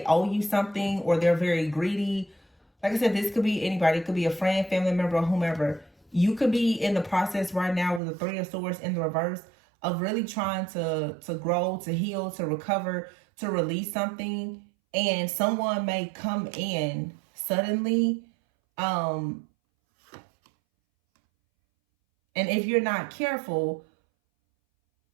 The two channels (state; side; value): drops out; left; at 8.0 s